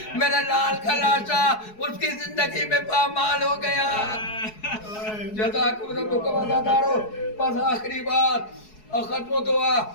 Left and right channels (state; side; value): late; right; 4.7 ms